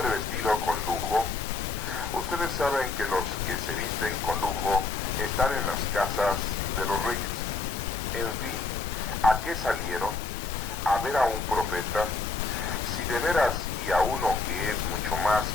vestido con lujo? Ustedes saben que los que se visten con lujo están en las casas de los reyes. En fin, ¿a qué salieron? ¿A ver a un profeta? Si de veras y a uno que es mucho más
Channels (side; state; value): right; quieter; 3.9 dB